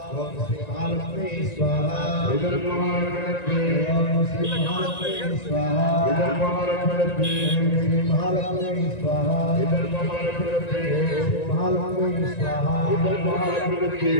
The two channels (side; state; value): right; late; 1.9 ms